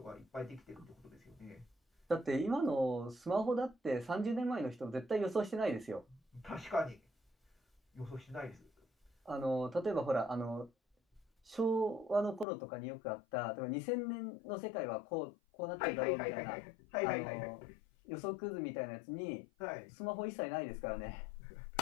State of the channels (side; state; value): right; drops out; at 12.5 s